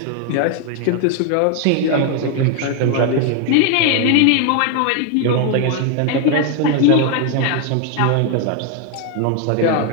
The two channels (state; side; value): different; both; correlation 0.01